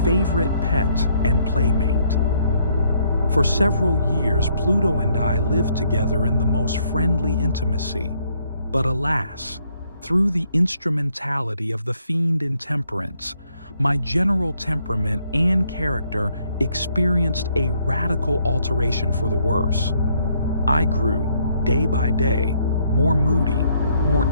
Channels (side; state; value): both; inverted; correlation -0.70